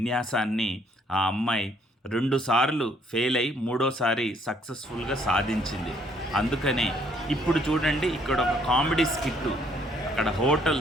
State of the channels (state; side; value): normal; both; correlation 0.66